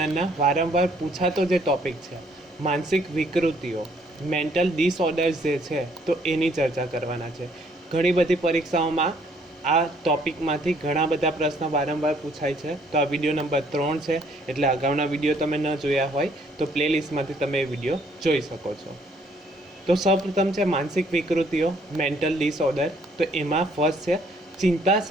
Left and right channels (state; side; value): normal; both; correlation 0.65